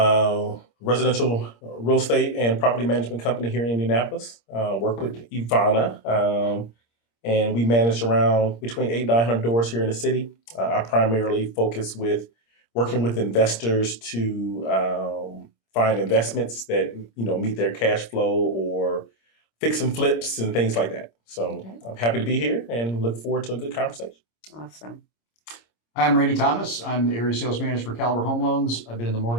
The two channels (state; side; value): late; right; 26 ms